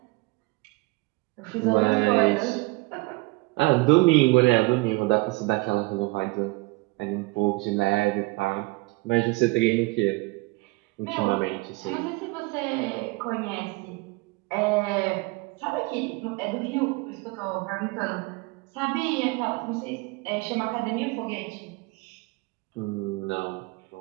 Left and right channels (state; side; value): quieter; left; 24.0 dB